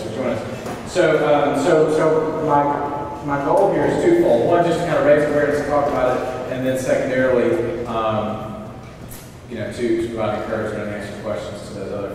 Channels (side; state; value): both; identical; correlation 1.00